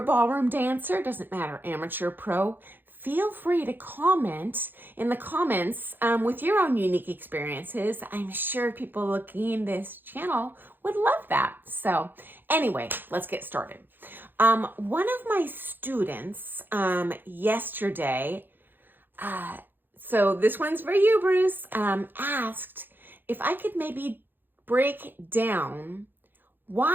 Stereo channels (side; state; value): left; late; 0.095 ms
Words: ballroom dancer, doesn't matter, amateur, pro, feel free to comment in the comments with your own unique experiences. I'm sure people looking this channel would love that. So anyway, let's get started. One of my students yesterday, so this one's for you, Bruce, asked if I could maybe break down